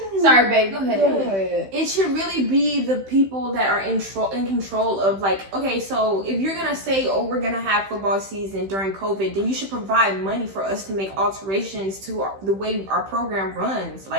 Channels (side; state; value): left; late; 15 ms